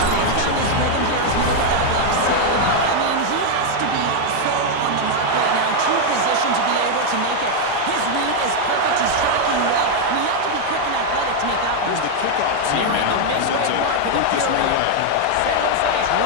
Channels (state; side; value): different; both; correlation 0.00